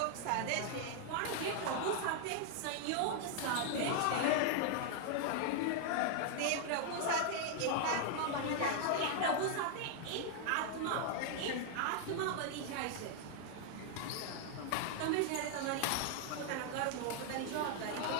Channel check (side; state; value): both; different; correlation 0.00